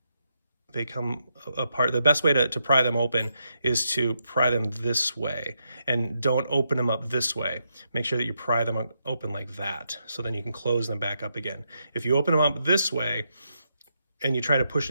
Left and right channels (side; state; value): both; inverted; correlation -0.81